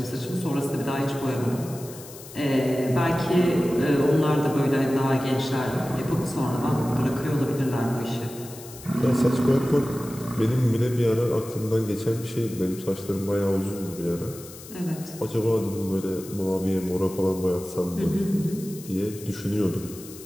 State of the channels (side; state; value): left; noise; hiss, 16 dB below the sound